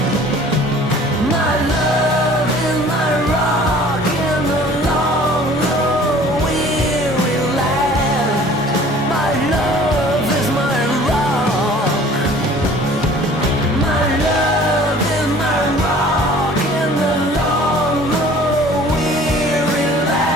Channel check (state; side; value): normal; both; correlation 0.50